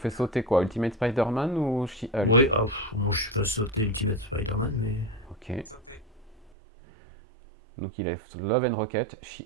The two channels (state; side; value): drops out; left; at 6.5 s